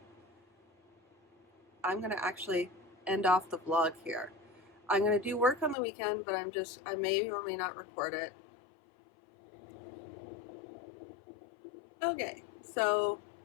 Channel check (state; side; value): drops out; right; at 5.8 s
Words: I'm gonna actually end off the vlog here. I'm gonna do work on the weekend, but I may or may not record it. Okay, so